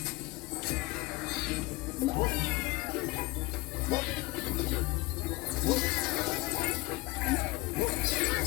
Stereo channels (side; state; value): right; quieter; 21.6 dB